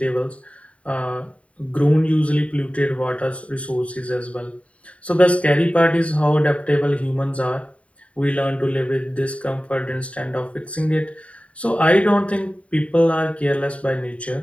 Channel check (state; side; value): late; right; 0.064 ms